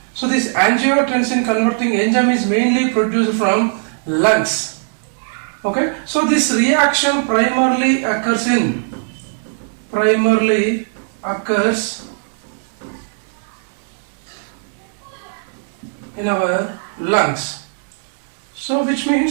So this angiotensin converting enzyme is mainly produced from lungs. So this reaction primarily occurs in our lungs. So which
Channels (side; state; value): left; silent; 67 dB below the other